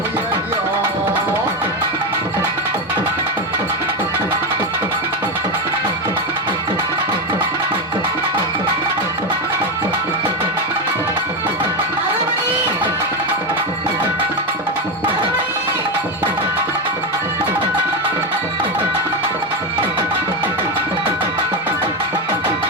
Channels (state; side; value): normal; both; correlation 0.12